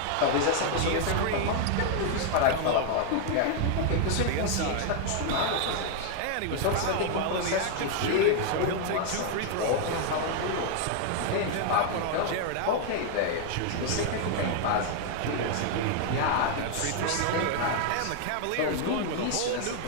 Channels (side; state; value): both; different; correlation 0.00